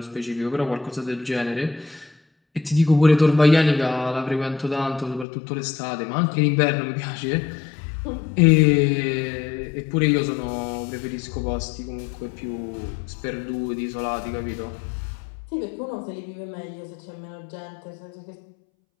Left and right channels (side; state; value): right; drops out; at 5.2 s